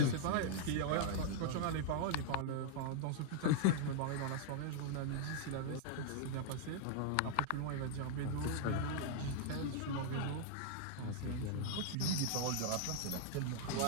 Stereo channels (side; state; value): both; different; correlation -0.01